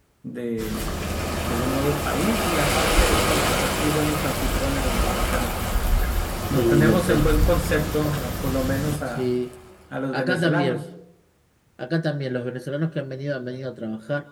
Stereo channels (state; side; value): identical; both; correlation 1.00